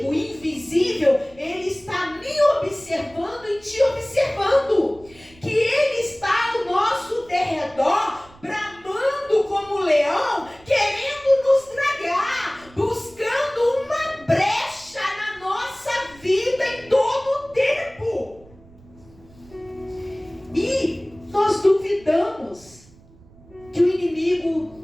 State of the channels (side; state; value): right; noise; rumble, 25 dB below the sound